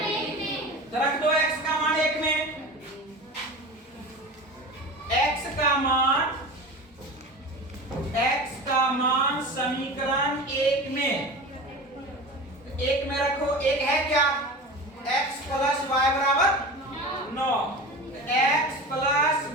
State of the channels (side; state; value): both; normal; correlation 0.32